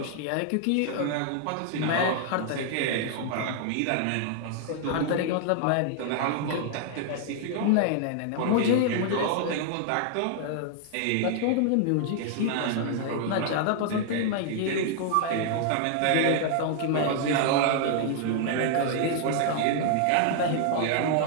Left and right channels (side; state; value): both; different; correlation 0.00